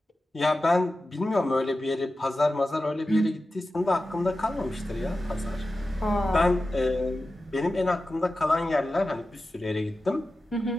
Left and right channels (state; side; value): normal; both; correlation 0.93